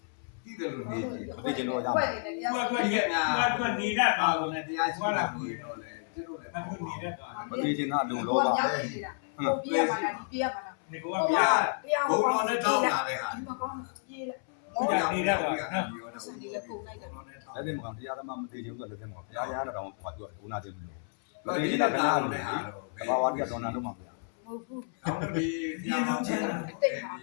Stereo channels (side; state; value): right; silent; 57 dB below the other